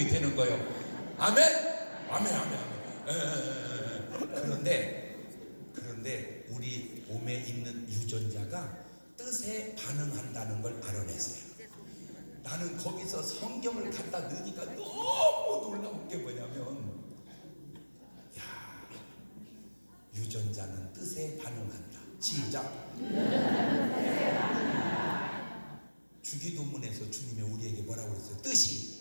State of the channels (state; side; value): inverted; both; correlation -1.00